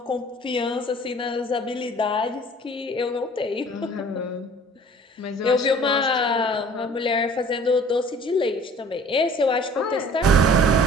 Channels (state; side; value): normal; both; correlation 0.49